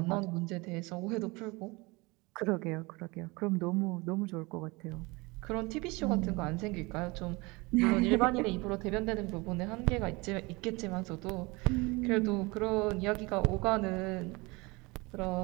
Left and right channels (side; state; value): left; quieter; 25.0 dB